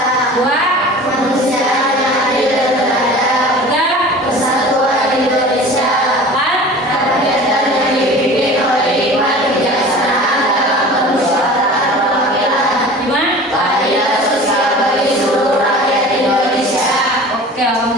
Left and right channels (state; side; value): normal; both; correlation 0.40